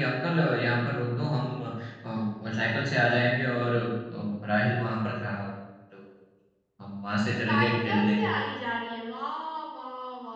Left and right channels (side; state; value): both; identical; correlation 1.00